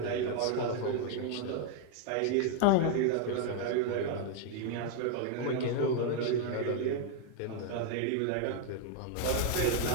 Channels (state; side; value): different; both; correlation 0.01